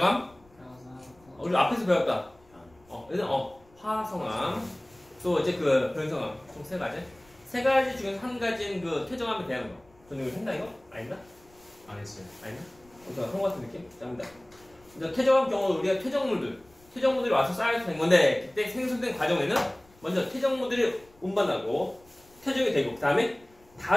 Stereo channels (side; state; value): left; noise; rumble, 29 dB below the sound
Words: 우리 앞에서 배웠다. 일단 화성함, 또 이제 그 변성함 총 3가지. 3가지 중에서 한 가지는 그 퇴적함에 대한 거. 저는 이거 했나 이거? 아닌가? 안 했어요. 아닌가? 그런 것 같은 느낌? 자, 합니다. 이제 퇴적함 경우 우리가 퇴적물들이 와서 쌓여서 된 건데, 그때 생성된 과정에는 먼저 퇴적물들이 운반하고 퇴적이 되고, 그 다음에